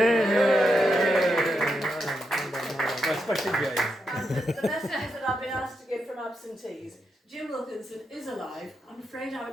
Especially Jane. And the messages that I've been asked to give from absentees. Jim Wilkinson is alive. I'm afraid I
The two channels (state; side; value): normal; both; correlation 0.84